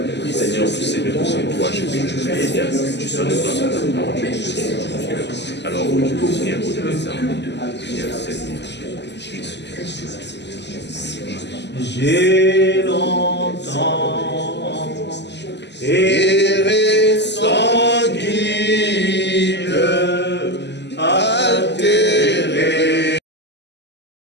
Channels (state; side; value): late; right; 0.50 ms